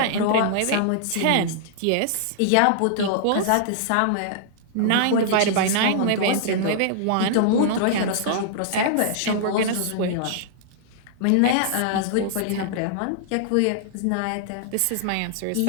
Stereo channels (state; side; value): different; both; correlation -0.01